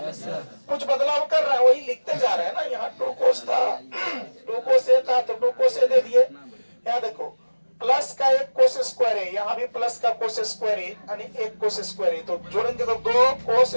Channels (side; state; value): both; inverted; correlation -1.00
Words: कुछ बदलाव कर रहा है, वही लिखते जा रहे हैं ना। यहाँ 2 cos था, 2 cos A था तो 2 cos A दे दिए। यहाँ देखो प्लस का एक कोस स्क्वायर है, यहाँ भी प्लस का कोस स्क्वायर है, यानी एक कोस स्क्वायर है, तो जोड़ेंगे तो 2 कोस